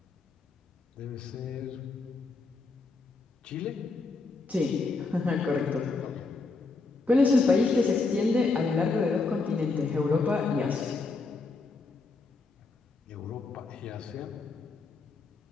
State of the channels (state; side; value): quieter; right; 3.9 dB